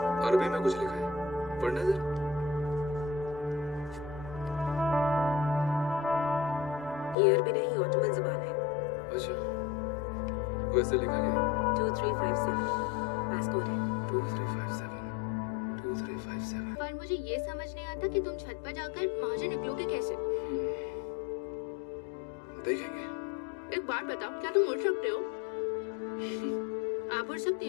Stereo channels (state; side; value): drops out; right; at 7.2 s